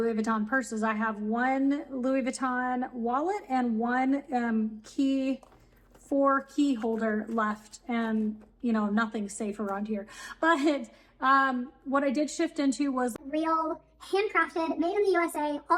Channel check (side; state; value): both; identical; correlation 1.00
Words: Vuitton purses. I have one Louis Vuitton wallet and one key holder left, and nothing's safe around here. But what I did shift into was real, handcrafted, made in the USA,